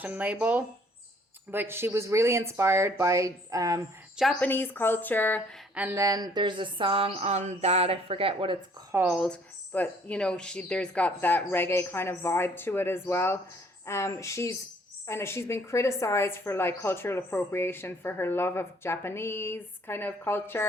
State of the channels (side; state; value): both; normal; correlation 0.60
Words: label. But she was really inspired by Japanese culture. And then there's a song on that, I forget what it's called. But, there's got that reggae kind of vibe to it as well. She's been criticized for cultural appropriation for her love of Japanese kind of